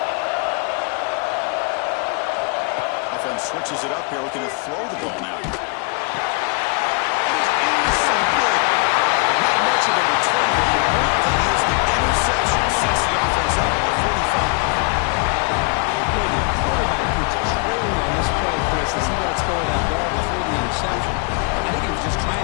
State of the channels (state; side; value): quieter; right; 32.7 dB